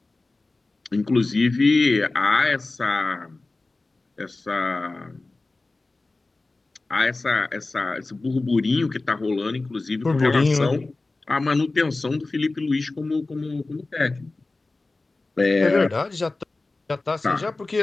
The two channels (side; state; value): right; quieter; 3.3 dB